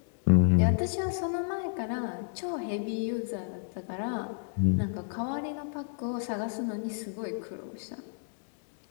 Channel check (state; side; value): silent; right; digital silence